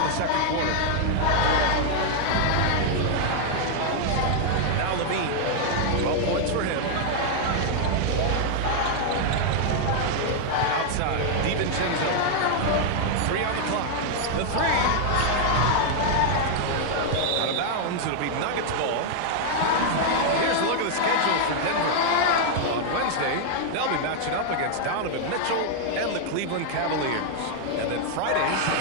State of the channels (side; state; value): both; different; correlation 0.00